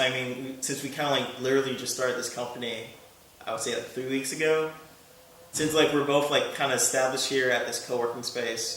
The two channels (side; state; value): both; identical; correlation 1.00